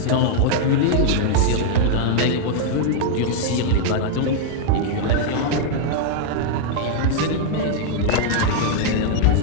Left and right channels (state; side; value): different; both; correlation 0.00